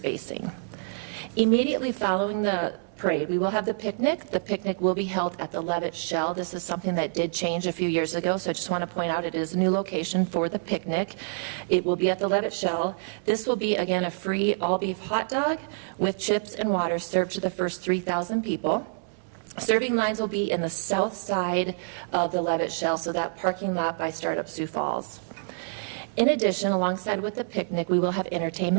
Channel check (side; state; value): left; silent; digital silence